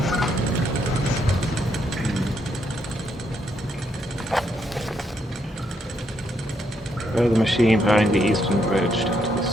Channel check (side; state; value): both; normal; correlation 0.76